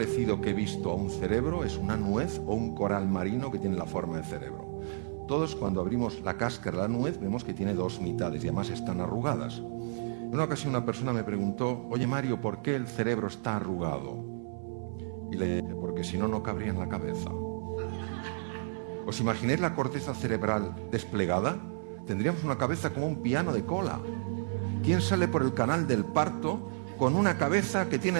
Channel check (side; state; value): left; silent; 57 dB below the other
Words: que he visto a un cerebro es una nuez o un coral marino que tiene la forma de cerebro. Todos, cuando abrimos la cáscara de la nuez, vemos que tiene dos mitades y además están arrugadas. En una ocasión una persona me preguntó: oye Mario, ¿por qué el cerebro está arrugado? Y le dije: porque si no, no cabría en la cabeza. ¿Os imagináis la corteza cerebral desplegada? Tendríamos una cabeza como un piano de cola. ¿Quién sale por el canal del parto con una cabeza que tiene